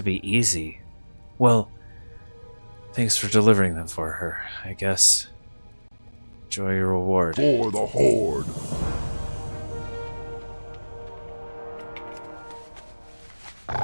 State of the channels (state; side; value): inverted; both; correlation -1.00